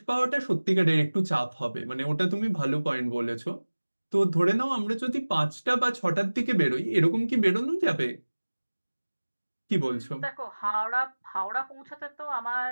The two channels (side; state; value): both; inverted; correlation -1.00